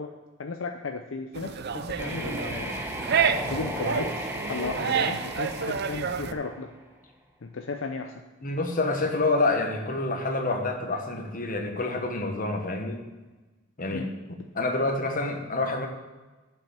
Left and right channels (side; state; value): both; normal; correlation -0.07